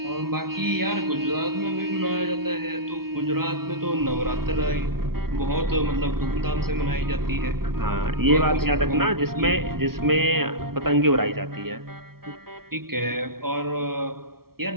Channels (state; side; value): late; left; 0.94 ms